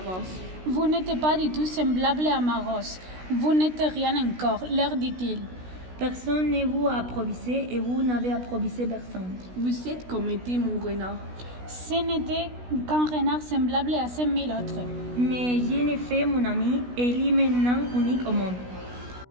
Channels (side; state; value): left; late; 16 ms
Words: Vous n'êtes pas du tout semblable à ma rose. Vous n'êtes rien encore, leur dit-il. Personne ne vous a approvisé et vous n'avez approvisé personne. Vous êtes comme était mon renard. Ce n'était qu'un renard semblable à 5000 autres. Mais je l'ai fait mon ami et il est maintenant unique au monde.